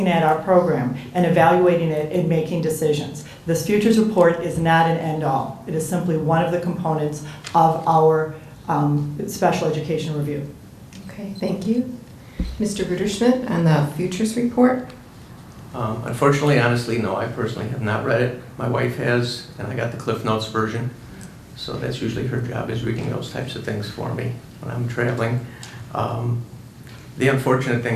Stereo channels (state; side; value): identical; both; correlation 1.00